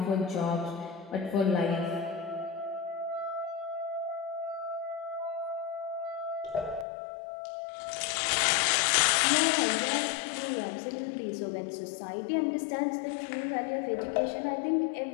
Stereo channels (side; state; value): right; drops out; at 6.9 s